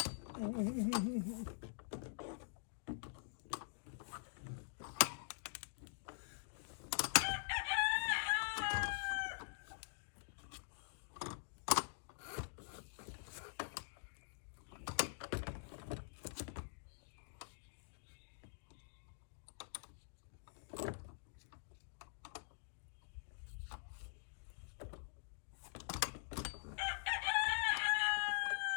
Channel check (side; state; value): right; silent; digital silence